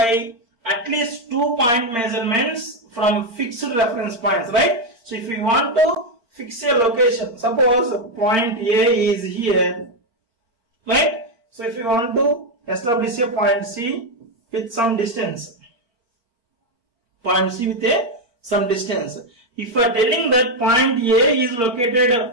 at least 2 point measurements from fixed reference points, right? So if we want to fix a location, suppose point A is here, right? So if you want to establish a point C with some distance, point C with some distance. If you are telling that point A is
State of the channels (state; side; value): late; left; 4.4 ms